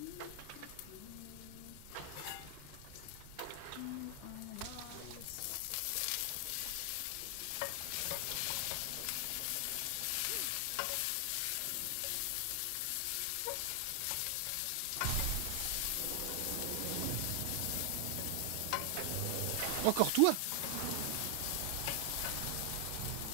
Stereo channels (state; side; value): different; both; correlation 0.00